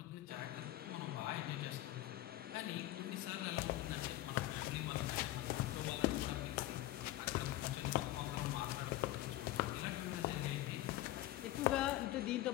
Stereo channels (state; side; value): quieter; right; 15.5 dB